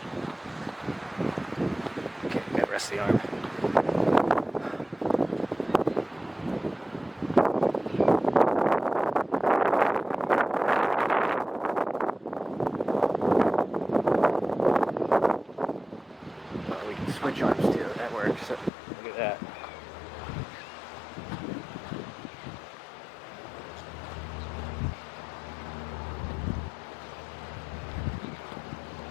Okay, gotta rest the arm. We can switch arms too, that works. So look at that.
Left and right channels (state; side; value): drops out; right; at 18.7 s